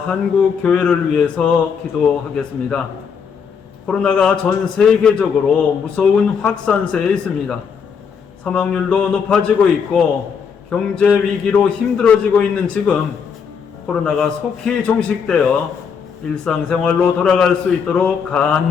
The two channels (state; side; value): quieter; right; 6.5 dB